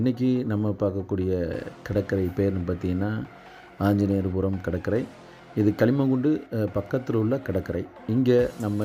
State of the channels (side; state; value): both; identical; correlation 1.00